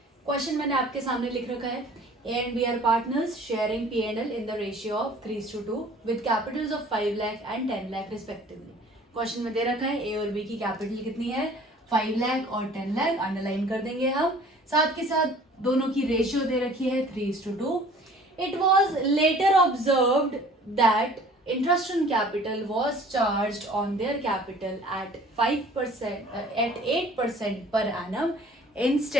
क्वेश्चन मैंने आपके सामने लिख रखा है, A and B are partners sharing P and L in the ratio of 3:2 with capitals of 5 lakh and 10 lakh respectively. Question में दे रखा है ए और बी की कैपिटल कितनी है, 5 लाख और 10 लाख, अंडरलाइन कर देंगे हम। साथ के साथ दोनों की रेशियो दे रखी है 3:2। It was later observed that interest on capital was charged on their capital at 5% at 8% per annum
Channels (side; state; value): both; normal; correlation 0.50